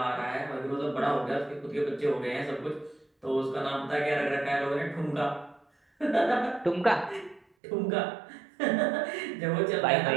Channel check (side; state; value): left; drops out; at 7.5 s